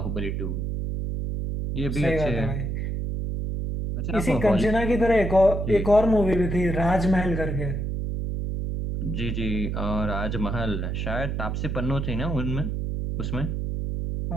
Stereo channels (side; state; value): right; noise; hum, 2 dB below the sound